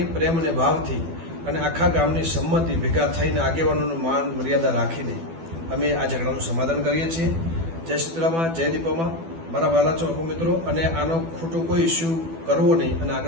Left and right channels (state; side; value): late; left; 12 ms